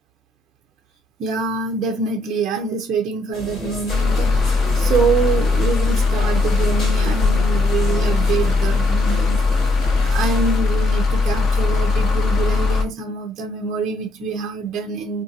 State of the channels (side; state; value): both; normal; correlation 0.73